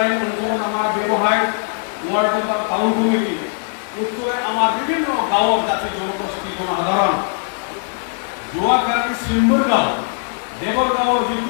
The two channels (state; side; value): silent; right; 66 dB below the other